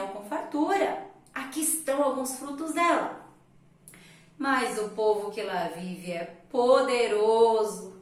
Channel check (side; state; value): both; identical; correlation 1.00